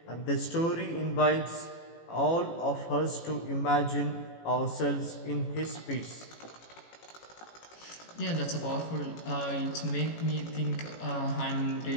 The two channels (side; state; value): right; late; 18 ms